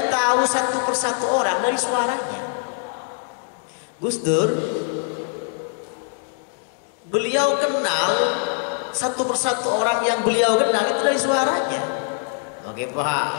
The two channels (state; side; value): silent; right; 55 dB below the other